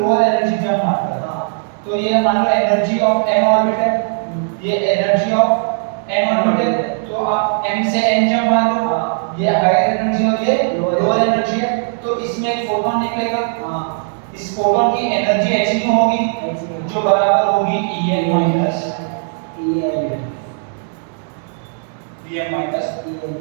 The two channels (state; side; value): silent; left; digital silence